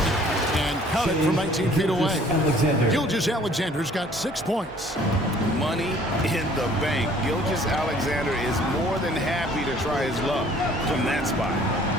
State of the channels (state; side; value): normal; both; correlation 0.55